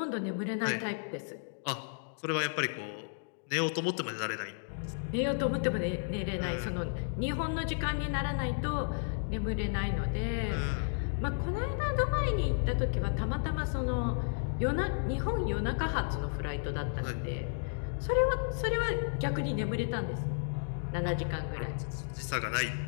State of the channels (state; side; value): silent; right; digital silence